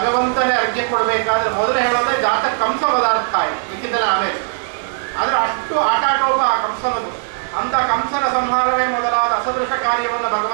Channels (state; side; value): silent; left; 61 dB below the other